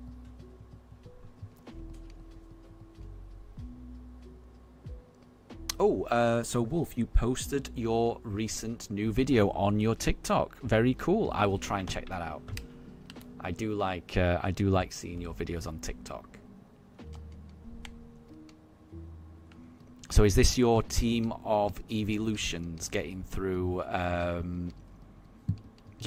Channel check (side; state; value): both; identical; correlation 1.00